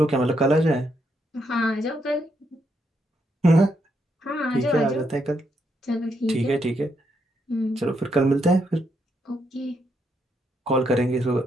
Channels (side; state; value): both; normal; correlation 0.78